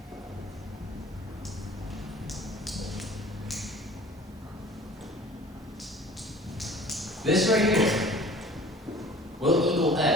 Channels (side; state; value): both; normal; correlation 0.46